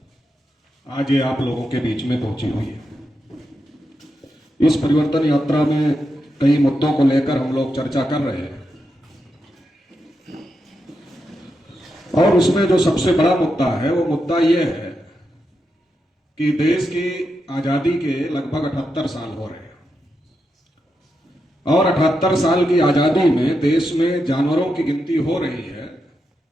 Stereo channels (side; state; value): both; normal; correlation 0.86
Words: आज ये आप लोगों के बीच में पहुंची हुई है। इस परिवर्तन यात्रा में कई मुद्दों को लेकर हम लोग चर्चा कर रहे हैं और उसमें जो सबसे बड़ा मुद्दा है वो मुद्दा ये है कि देश की आजादी के लगभग 78 साल हो रहे हैं और 78 साल की आजादी में देश में जानवरों की गिनती हो रही है,